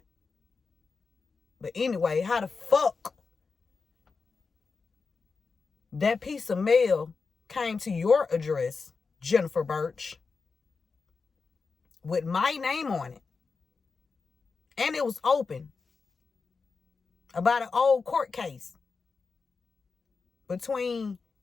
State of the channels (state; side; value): quieter; right; 4.7 dB